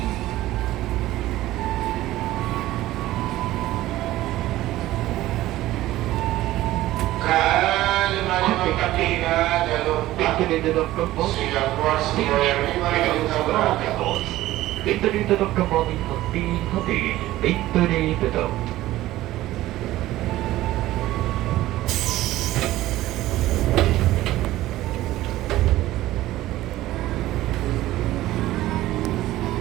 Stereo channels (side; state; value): left; quieter; 15.7 dB